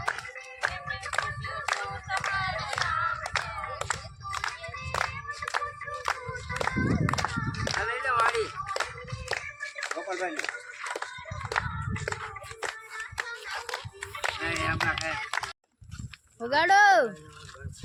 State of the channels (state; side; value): identical; both; correlation 1.00